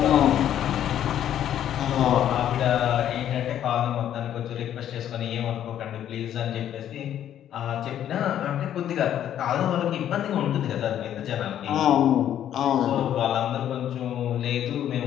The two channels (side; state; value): right; quieter; 10.7 dB